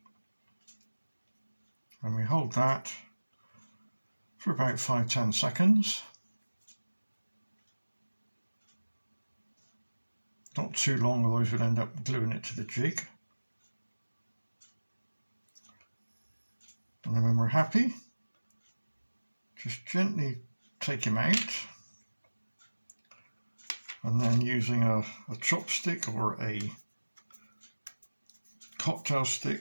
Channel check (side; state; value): both; inverted; correlation -1.00